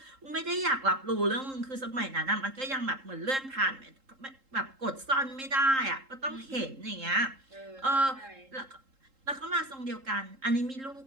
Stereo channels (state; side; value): late; left; 3.7 ms